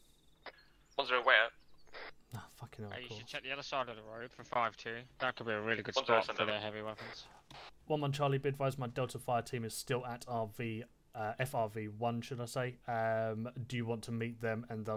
1-0 way out. Ah, fucking hell, Hey, of you course. should check the other side of the road for 5-2. That could be a really good 1-0 spot send for over. their heavy weapons. 1-1 Charlie, be advised my Delta Fire team is still at FRV1, should I say. Do you want to meet them and they'll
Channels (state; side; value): identical; both; correlation 1.00